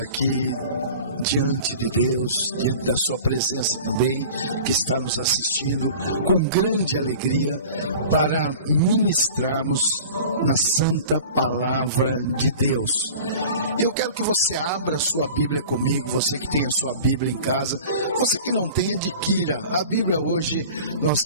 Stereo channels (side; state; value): both; inverted; correlation -0.41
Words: diante de Deus, diante da sua presença também, que está nos assistindo com grande alegria para ministrarmos na santa palavra de Deus. Eu quero que você abra a sua Bíblia comigo, você que tem a sua Bíblia em casa, você que não tem, adquira. A Bíblia hoje nós